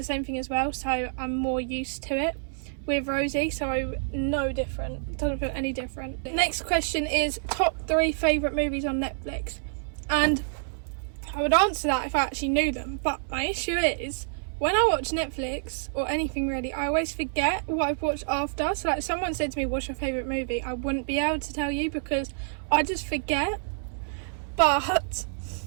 same thing as well, so I'm more used to it with Rosie, so no different. It doesn't feel any different. Next question is top 3 favourite movies on Netflix, and I would answer that if I actually knew them, but my issue is when I watch Netflix or anything really, I always forget what I've watched after. So like, if someone said to me, what's your favourite movie, I wouldn't be able to tell you because I just forget. But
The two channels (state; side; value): silent; left; 59 dB below the other